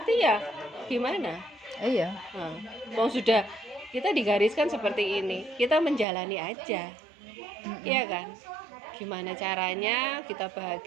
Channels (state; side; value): drops out; left; at 6.1 s